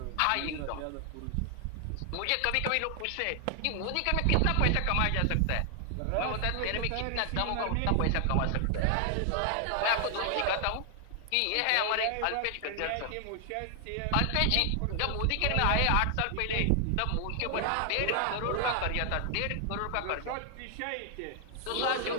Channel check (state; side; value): different; both; correlation 0.00